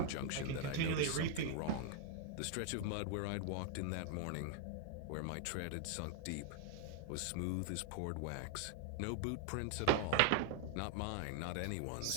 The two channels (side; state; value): both; different; correlation 0.00